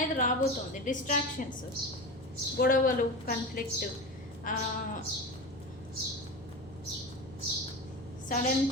రాబోతుంది. డిస్ట్రాక్షన్స్, గొడవలు, కాన్ఫ్లిక్ట్,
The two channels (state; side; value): normal; both; correlation 0.26